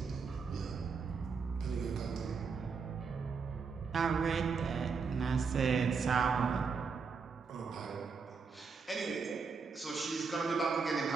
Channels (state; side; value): quieter; left; 5.2 dB